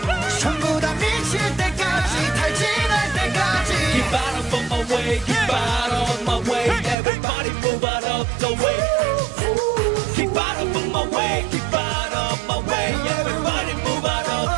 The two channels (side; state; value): left; drops out; at 7.0 s